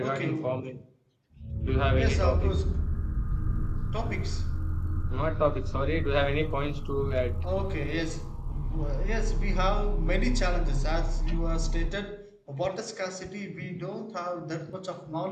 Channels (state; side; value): identical; both; correlation 1.00